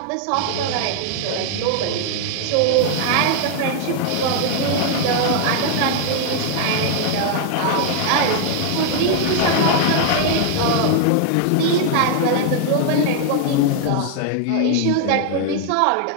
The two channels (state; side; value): different; both; correlation 0.00